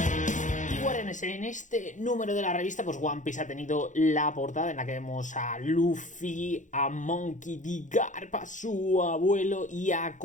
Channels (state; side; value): late; right; 0.36 ms